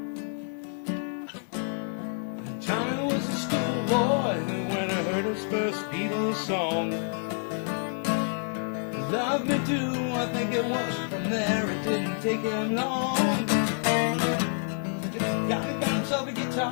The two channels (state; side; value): silent; right; 59 dB below the other